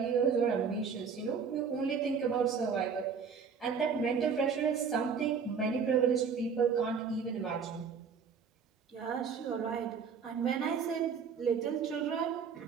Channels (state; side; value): quieter; left; 6.2 dB